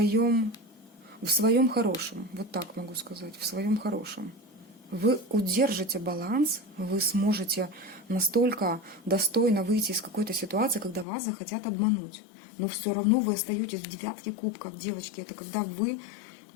в своем хорошем, вот так могу сказать, в своем хорошем. Вы удержите баланс, вы сможете настолько достойно выйти из какой-то ситуации, когда вас захотят обмануть. Но все равно вы остаетесь в девятке кубков, девочки. Это когда вы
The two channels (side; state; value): right; drops out; at 11.1 s